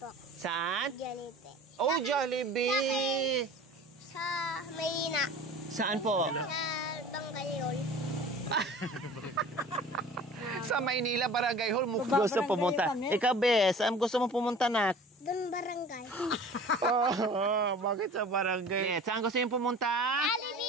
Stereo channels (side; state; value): both; normal; correlation 0.42